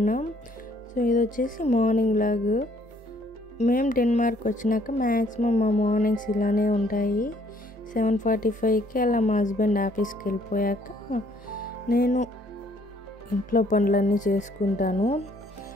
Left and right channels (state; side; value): normal; both; correlation 0.63